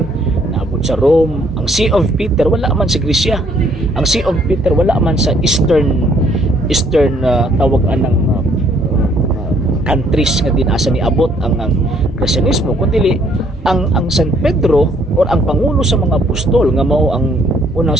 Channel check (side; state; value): both; normal; correlation 0.65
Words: naabot sa Rome. Ang See of Peter wala man sa Grisya. Ang See of Peter wala man sa Eastern tawag anang countries nga dinasa ni abot ang Kristyanismo kundi ang San Pedro or ang pangulo sa mga apostol nga mao ang unang